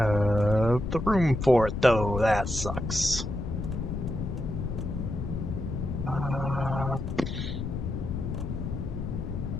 the room for it, though. That sucks.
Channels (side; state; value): left; noise; rumble, 4 dB below the sound